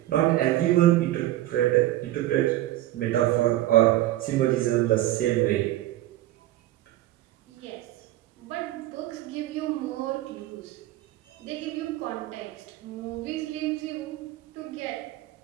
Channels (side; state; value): left; quieter; 15.1 dB